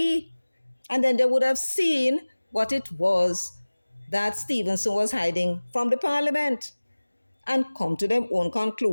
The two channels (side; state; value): both; inverted; correlation -1.00